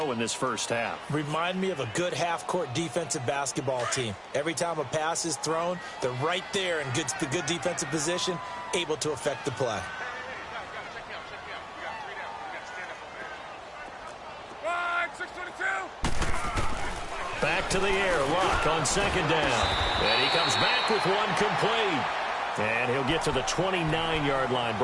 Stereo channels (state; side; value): identical; both; correlation 1.00